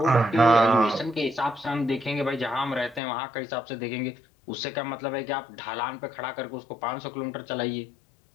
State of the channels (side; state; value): right; drops out; at 3.0 s